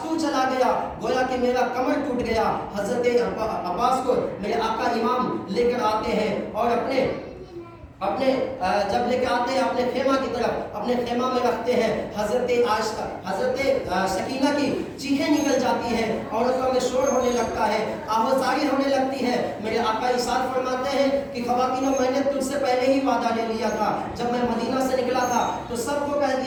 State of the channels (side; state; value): both; identical; correlation 1.00